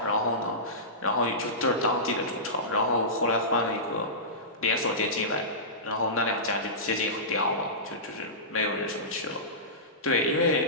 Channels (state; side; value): normal; both; correlation -0.19